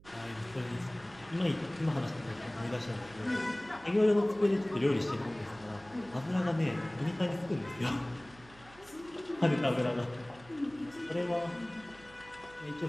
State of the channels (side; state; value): right; noise; hum, 23 dB below the sound